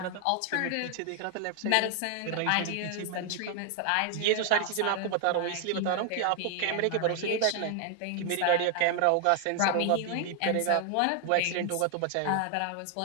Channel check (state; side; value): different; both; correlation 0.00